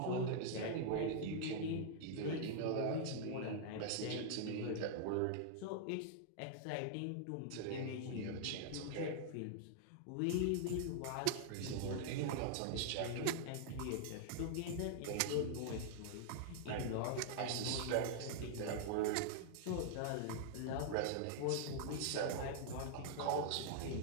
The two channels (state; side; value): different; both; correlation -0.01